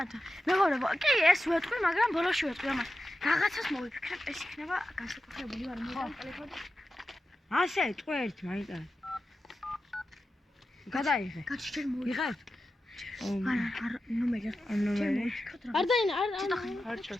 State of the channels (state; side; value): normal; both; correlation 0.91